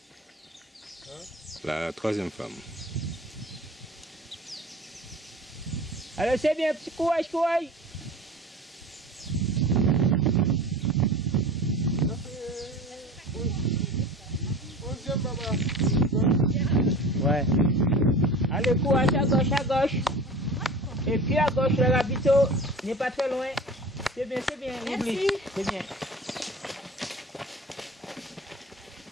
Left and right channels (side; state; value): both; normal; correlation 0.38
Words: La troisième femme. Alors, c'est bien, petit courage, courage. Ouais. Allez, courage à gauche, à gauche. Et puis à gauche, le ravito n'est pas très loin. C'est bien, oublie. C'est bien.